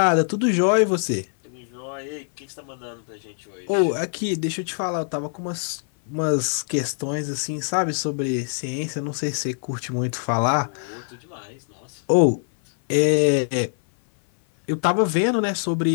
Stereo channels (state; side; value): silent; right; 58 dB below the other